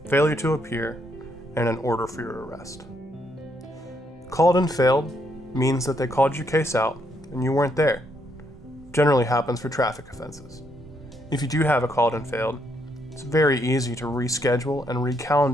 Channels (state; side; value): normal; both; correlation 0.74